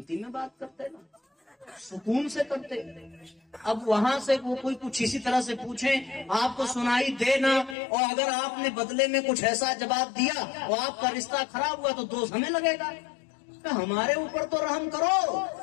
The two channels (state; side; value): drops out; right; at 7.8 s